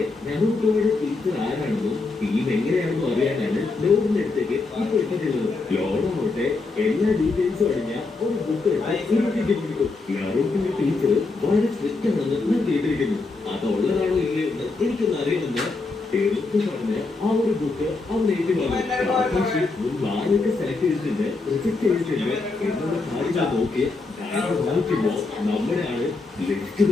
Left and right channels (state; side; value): quieter; right; 3.7 dB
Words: നറൂട്ടോയുടെ ടീച്ചർ ആരാണെന്നും ടീം എങ്ങനെയാണെന്നും അറിയാനാണ് ലോറിന്റെ അടുത്തേക്ക് ഇപ്പൊ എത്തുന്നത്. ലോറാവട്ടെ എല്ലാ ഡീറ്റെയിൽസും അടങ്ങിയ ഒരു ബുക്ക് കൊടുക്കും. നറൂട്ടോയുടെ ടീച്ചർ വളരെ സ്ട്രിക്റ്റ് ആണെന്ന് ഞാൻ കേട്ടിരിക്കുന്നു. അതുള്ളതാണോ ഇല്ലയോ എന്ന് എനിക്കൊന്ന് അറിയുമെന്ന് പെരൂക്ക് പറഞ്ഞ് ആ ഒരു ബുക്ക് അവൻ ഏറ്റുവാങ്ങും. ആരൊക്കെ സെലക്ട് ചെയ്തിട്ടുണ്ട്, റിജക്ട് ചെയ്തിട്ടുണ്ട് എന്നുള്ള കാര്യങ്ങൾ നോക്കി നോക്കുമ്പോ നമ്മുടെ ആള് ലെഫ്റ്റ്